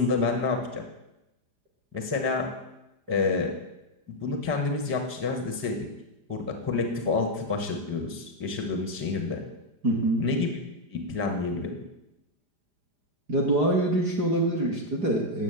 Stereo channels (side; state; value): left; late; 4.9 ms